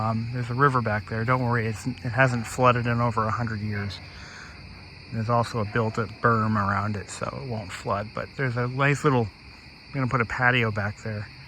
There's a river back there. Don't worry, it hasn't flooded in over 100 years. There's also a built-up berm around it, so it won't flood, but there's a nice little... I'm going to put a patio back there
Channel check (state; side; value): identical; both; correlation 1.00